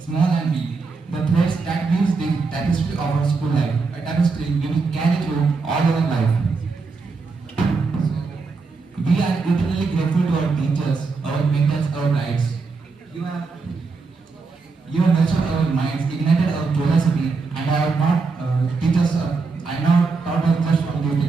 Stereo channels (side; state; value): left; quieter; 4.4 dB